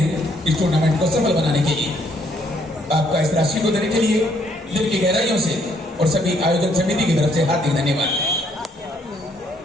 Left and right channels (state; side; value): normal; both; correlation 0.69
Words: इस टूर्नामेंट को सफल बनाने के लिए। आपका इस राशि को देने के लिए दिल की गहराइयों से और सभी आयोजन समिति की तरफ से हार्दिक धन्यवाद।